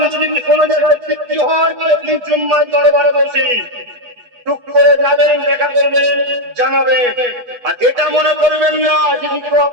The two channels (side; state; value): left; late; 8.2 ms